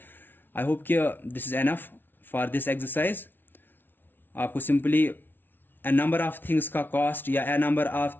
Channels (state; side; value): late; right; 0.097 ms